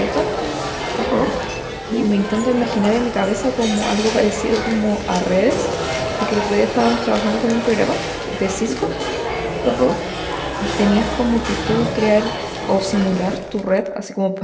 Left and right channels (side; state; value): both; identical; correlation 1.00